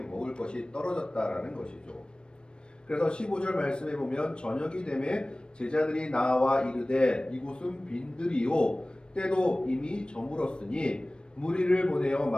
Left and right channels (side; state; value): right; late; 0.054 ms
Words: 것이 떨어졌다라는 것이죠. 그래서 15절 말씀에 보면 저녁이 되매 제자들이 나와 이르되 이곳은 빈들이요 때도 이미 저물었으니 무리를 보내어